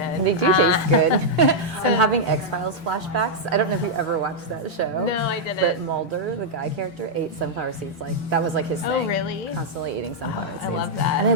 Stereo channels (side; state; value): both; normal; correlation -0.05